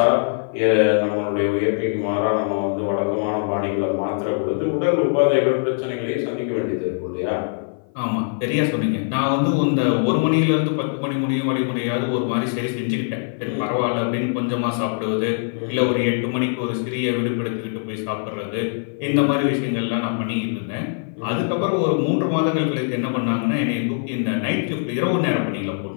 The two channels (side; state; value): right; silent; 56 dB below the other